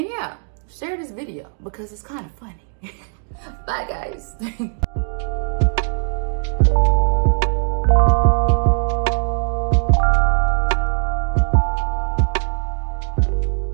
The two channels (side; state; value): left; silent; 64 dB below the other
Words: yeah, share this video because it's kind of funny. Bye, guys.